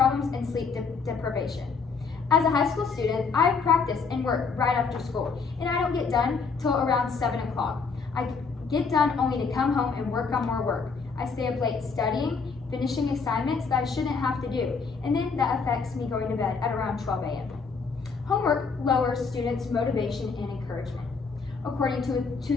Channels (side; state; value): right; quieter; 5.0 dB